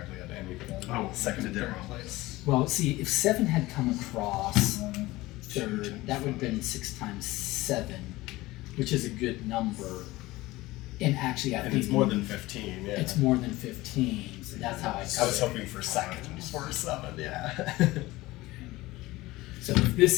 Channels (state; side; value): quieter; right; 19.1 dB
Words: had anything on Oh, second and did that third wrong. place. Well, see, if 7 had come across third, that would have been 6 times 7, which is a good number. And actually, I And think it's more than 15. Yeah. it's more than 15. So that's how I. I was hoping for second for 7. Yeah. So if